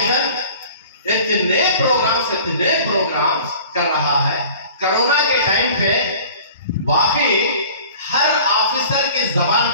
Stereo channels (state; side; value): inverted; both; correlation -0.45